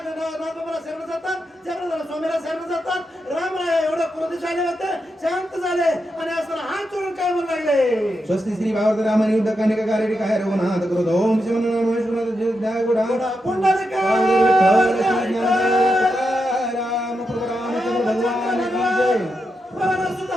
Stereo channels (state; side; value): normal; both; correlation 0.86